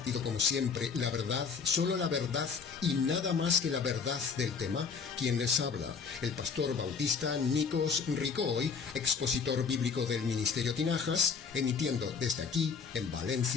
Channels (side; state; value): right; quieter; 5.7 dB